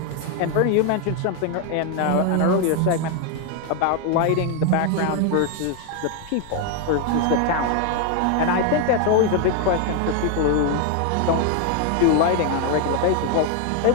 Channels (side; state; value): both; different; correlation 0.01